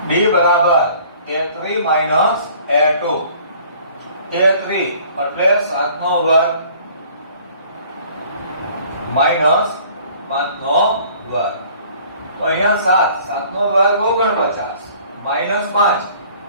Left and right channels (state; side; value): inverted; both; correlation -0.53